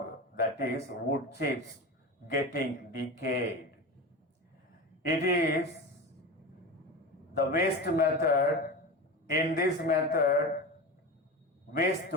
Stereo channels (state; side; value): normal; both; correlation 0.26